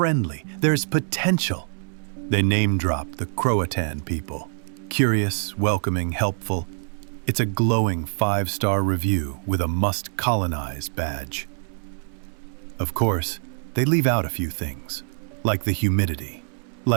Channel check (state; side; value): silent; left; 62 dB below the other